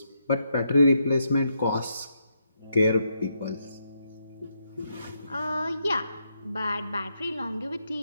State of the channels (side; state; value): both; inverted; correlation -0.80